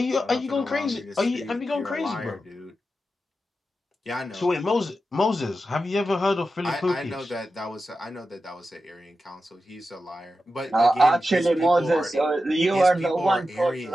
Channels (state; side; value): normal; both; correlation 0.91